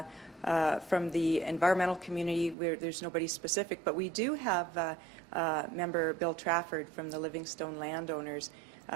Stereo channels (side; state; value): left; drops out; at 2.6 s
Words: from the environmental community, there's nobody specific, but we do have member Bill Trafford from the Livingstone Landowners